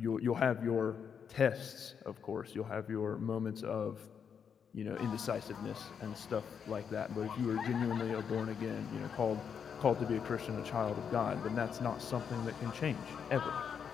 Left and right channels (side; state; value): right; quieter; 7.2 dB